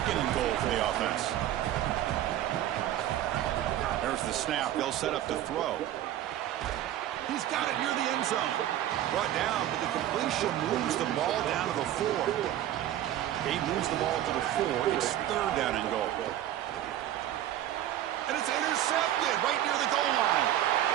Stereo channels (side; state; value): left; quieter; 12.5 dB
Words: and goal for the offense. There's the snap. They'll set up to throw. He's got it near the end zone. Brought down, but the completion moves the ball down to the 4. He moves the ball to the 4. It's 3rd down and goal. And it's intercepted right near the goal line.